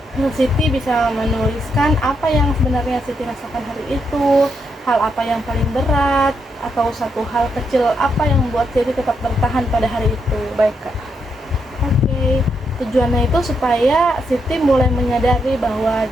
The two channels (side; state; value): both; normal; correlation 0.80